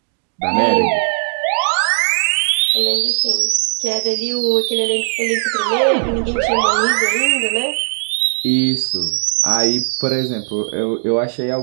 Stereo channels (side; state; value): left; silent; 68 dB below the other